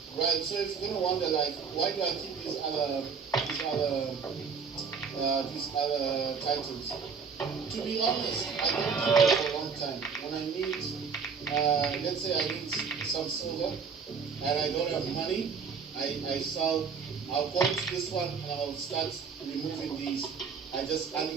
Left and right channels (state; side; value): quieter; left; 5.8 dB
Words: Right, so if you're gonna wonder, like, why do I keep these other titles? To be honest, I don't keep them for a long time. When I need, let's say I need some silver, and I don't have money, I sell. I'll go into this one and I'll start removing these. I just